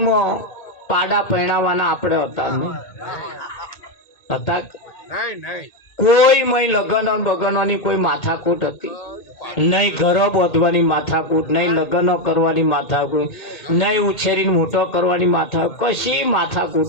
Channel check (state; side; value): late; right; 2.2 ms